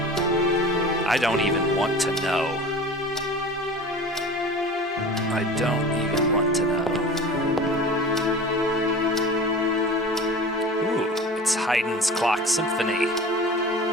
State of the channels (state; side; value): normal; both; correlation 0.38